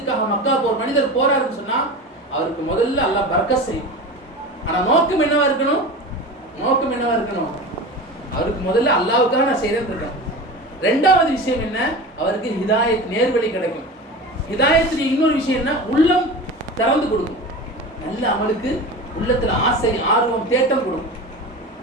மக்கா போற மனிதர் போறாருன்னு சொன்னா அவருக்கு முதல்ல அல்லாஹ் பரக்கத் செய்யும். ஆனா நோக்கம் என்னவா இருக்கணும்? அவருக்கு முதல்ல அல்லாஹ்வுக்காக நான் செய்யறேன்னு இருக்கேன். ரெண்டாவது விஷயம் என்ன? அவருக்கு ஹிதாயத், நேர்வழி கிடைக்கும். ஹிதாயத்துடைய இன்னொரு விஷயம் என்ன? உள்ளம் திறந்து கொடுக்கும். நல்ல அமலுக்கு உள்ளத்துல ஆசை, ஆர்வம், தேட்டம் கொடுக்கும்.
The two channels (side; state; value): both; normal; correlation 0.31